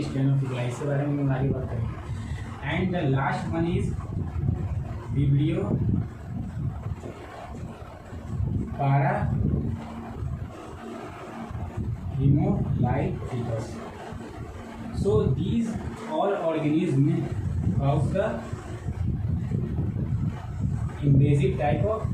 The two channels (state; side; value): identical; both; correlation 1.00